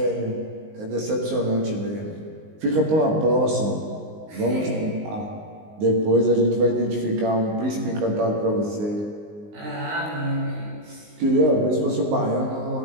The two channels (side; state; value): left; late; 19 ms